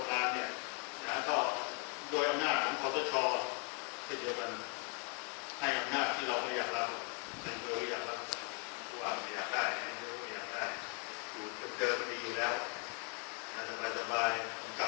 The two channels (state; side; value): quieter; right; 32.1 dB